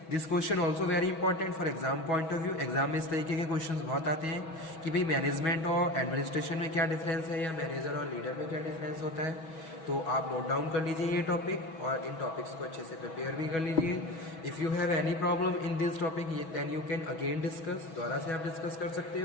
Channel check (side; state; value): right; late; 6.2 ms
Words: this question also very important for exam point of view. Exam में इस तरीके के क्वेश्चन बहुत आते हैं कि भाई मैनेजमेंट और एडमिनिस्ट्रेशन में क्या डिफरेंस है, या मैनेजर और लीडर में क्या डिफरेंस होता है। तो आप नोट डाउन कर लीजिए ये टॉपिक और इन टॉपिक्स को अच्छे से प्रिपेयर भी कर लीजिए। If you have any problem in this topic then you can again discuss, दोबारा से आप डिस्कस कर सकते